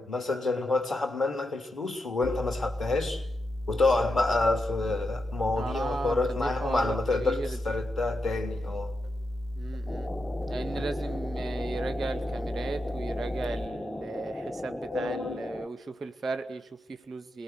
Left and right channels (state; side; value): normal; both; correlation 0.86